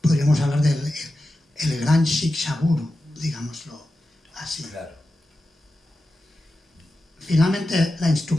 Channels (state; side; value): normal; both; correlation 0.92